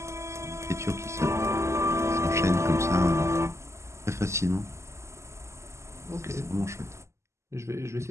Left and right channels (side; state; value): left; late; 0.13 ms